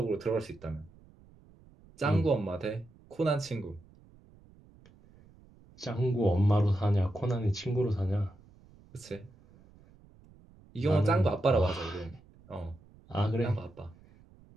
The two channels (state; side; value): noise; right; rumble, 26 dB below the sound